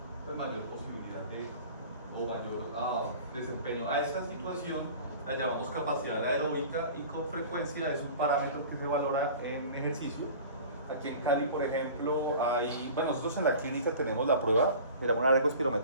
pues mayor posibilidad o mayor desempeño. A esta situación la llamamos capacidad aeróbica y con frecuencia es un parámetro que se valora en ejercicio. Aquí en Cali, por ejemplo, bueno, nosotros en la clínica tenemos la prueba, mira, una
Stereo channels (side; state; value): both; inverted; correlation -0.41